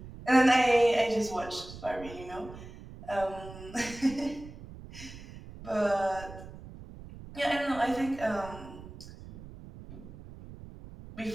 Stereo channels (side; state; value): right; noise; rumble, 15 dB below the sound